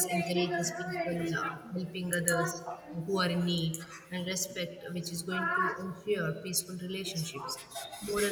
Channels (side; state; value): both; identical; correlation 1.00